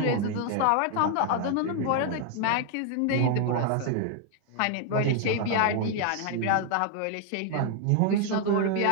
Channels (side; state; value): both; different; correlation 0.00